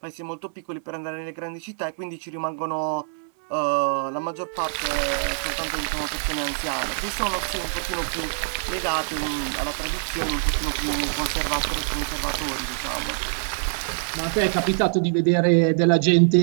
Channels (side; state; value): left; silent; digital silence